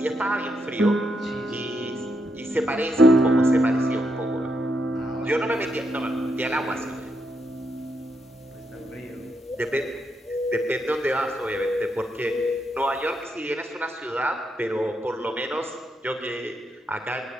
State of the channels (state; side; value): normal; both; correlation 0.80